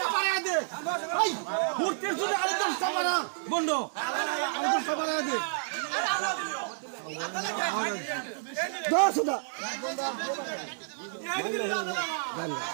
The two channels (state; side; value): silent; left; digital silence